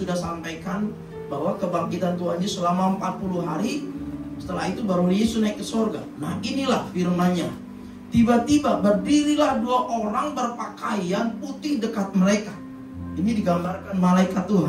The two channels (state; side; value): identical; both; correlation 1.00